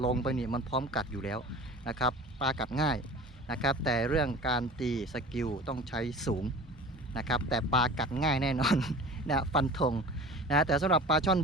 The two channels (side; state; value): both; normal; correlation 0.40